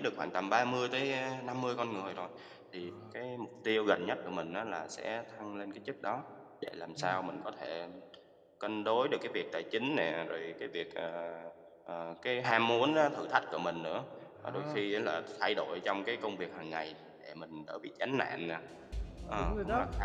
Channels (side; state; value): both; identical; correlation 1.00